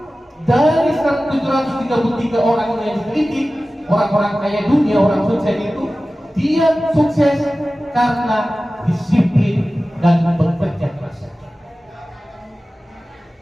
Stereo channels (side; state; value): both; normal; correlation 0.96